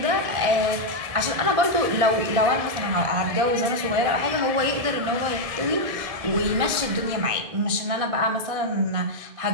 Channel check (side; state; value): left; late; 1.6 ms